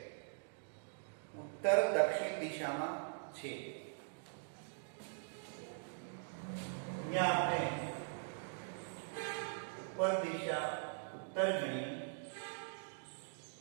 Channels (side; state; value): left; silent; digital silence